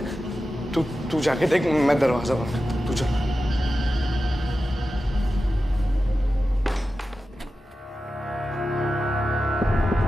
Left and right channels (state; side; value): normal; both; correlation 0.93